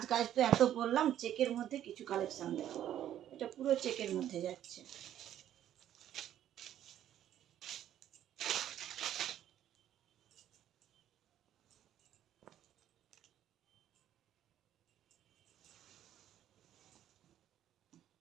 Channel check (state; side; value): quieter; left; 11.3 dB